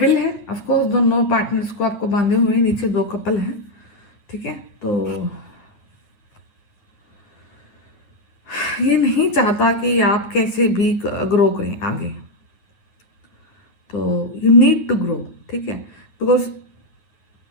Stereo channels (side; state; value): right; late; 9.4 ms